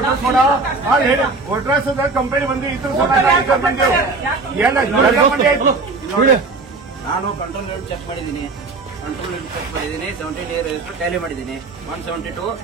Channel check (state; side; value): quieter; left; 3.7 dB